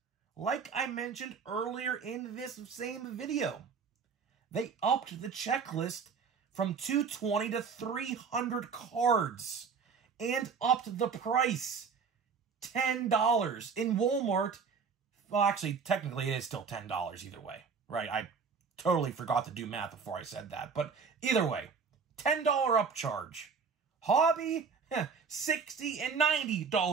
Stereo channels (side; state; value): left; quieter; 5.7 dB